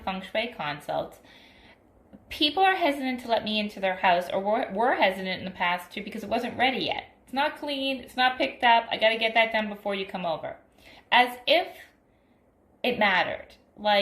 feng shui consults, people are hesitant to let me into their house, or were hesitant in the past too because it wasn't ready yet. It's not clean, it's not picked up, I got to get that done before you come over. As if it mattered,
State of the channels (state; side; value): identical; both; correlation 1.00